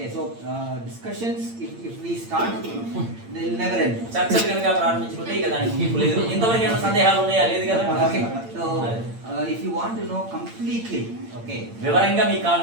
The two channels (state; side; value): late; left; 8.8 ms